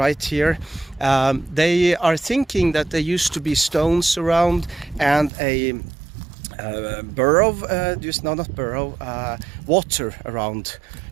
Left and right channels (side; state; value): left; drops out; at 5.3 s